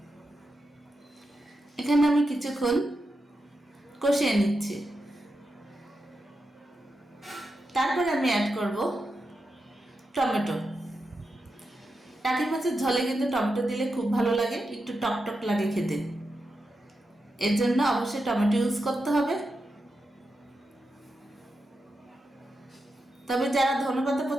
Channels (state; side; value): normal; both; correlation 0.88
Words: এখানে আমি কিছুক্ষণ কষিয়ে নিচ্ছি। তারপরে আমি অ্যাড করব টমেটো। টাকি মাছের ঝোলে কিন্তু টমেটো দিলে খুব ভালো লাগে, একটু টক টক লাগে খেতে। এর জন্য অবশ্যই টমেটো ইউজ করতে হবে। তবে যারা ধনেপাতা